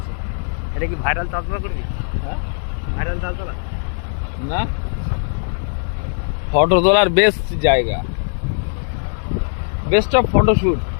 এটা কি ভাইরাল চাষবা করবি? হ্যাঁ, ভাইরাল চাল চালা না ফটো তোলার বেস্ট জায়গা, বেস্ট অফ ফটোশুট।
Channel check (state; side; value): silent; right; digital silence